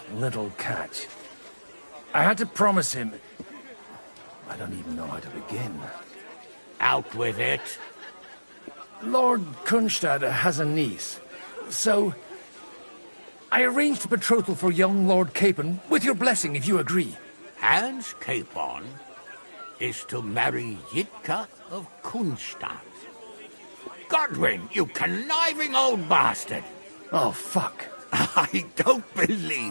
little catch. I had to promise him... I don't even know how to begin. Out with it. Lord Kunstadt has a niece, so... I arranged a betrothal for young Lord Capon, with your blessing if you agree. Hans Capon is to marry Yitka of Kunstadt. Godwin, you conniving old bastard! Oh, fuck. I don't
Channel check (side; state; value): both; inverted; correlation -1.00